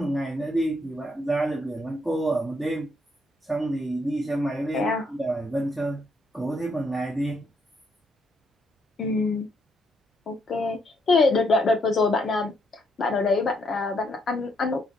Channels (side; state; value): both; normal; correlation 0.74